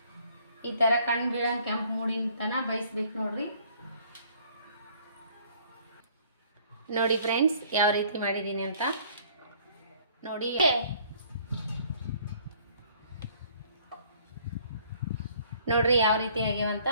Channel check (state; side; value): inverted; both; correlation -0.58